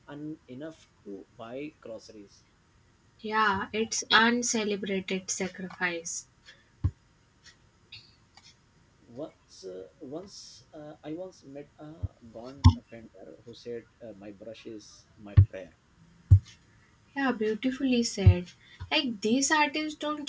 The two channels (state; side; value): identical; both; correlation 1.00